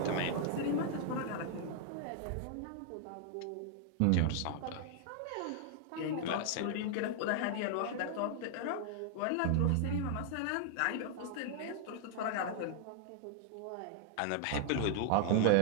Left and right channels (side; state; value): both; different; correlation 0.00